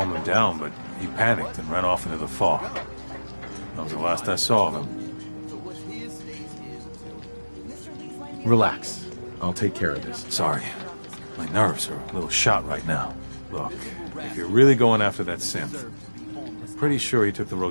him down, but he panicked and ran off into the fog. That was the last I saw of him. Relax. I'll take care of this. Sorry. My nerves are a little shot right now. Look, if you're really going after that synth, I'm pretty sure he took the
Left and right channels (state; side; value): inverted; both; correlation -1.00